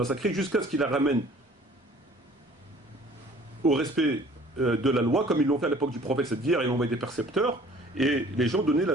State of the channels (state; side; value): normal; both; correlation 0.52